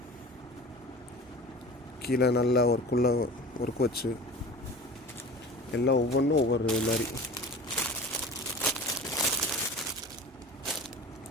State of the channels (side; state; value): both; normal; correlation 0.38